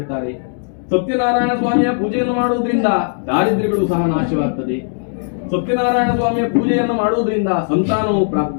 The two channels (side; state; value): right; silent; digital silence